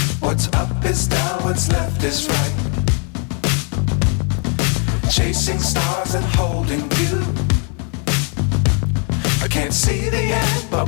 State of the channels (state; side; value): quieter; right; 39.4 dB